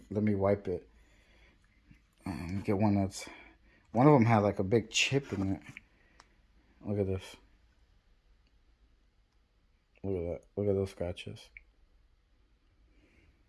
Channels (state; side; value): identical; both; correlation 1.00